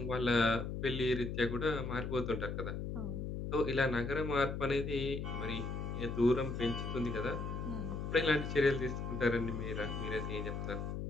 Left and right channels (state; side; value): noise; left; hum, 4 dB below the sound